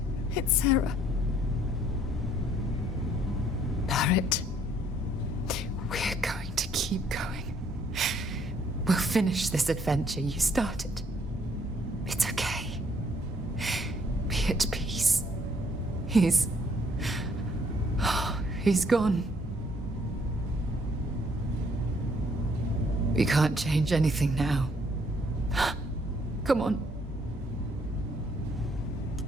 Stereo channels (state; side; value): normal; both; correlation 0.65